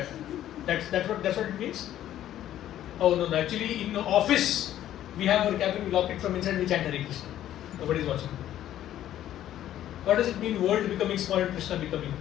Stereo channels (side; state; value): right; quieter; 12.1 dB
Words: what it means. Oh no, actually in the office we have our cabin, we lock it from inside, we chant Hare Krishna. Nobody is watching. What does it mean world becoming small and Krishna becoming